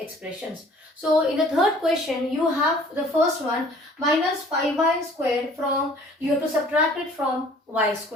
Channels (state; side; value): normal; both; correlation 0.53